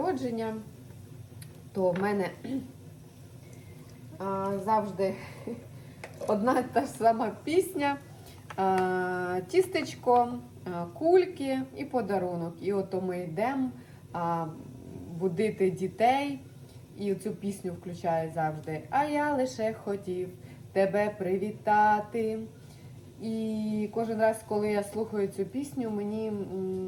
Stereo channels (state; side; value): identical; both; correlation 1.00